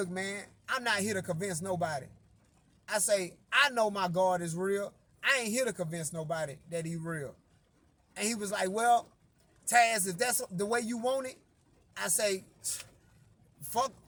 man, I'm not here to convince nobody. I say, I know my God is real. I ain't here to convince nobody that he real. And he was like, well, Taz, if that's the way you want it, I say, fuck,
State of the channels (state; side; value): identical; both; correlation 1.00